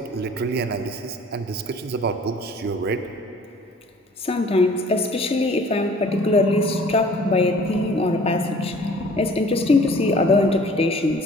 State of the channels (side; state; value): both; normal; correlation 0.51